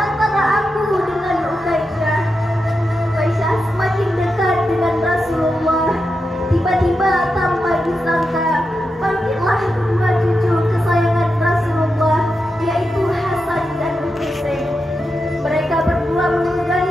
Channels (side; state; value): both; normal; correlation 0.88